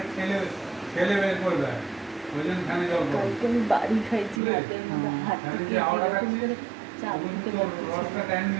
ঠেলে ঠেলে বের করে দেয়, ওই জন্য ফ্যানে জল পড়ে। কালকে আমি বাড়ি খাইছি রাতের মধ্যে হাত ফ্যানে থেকে যে হাওয়াটা এরকম খাচ্ছে করে চাপ ওগুলো দিতে তোর পারতেছি রসটা না। টাইম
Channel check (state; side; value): drops out; left; at 4.4 s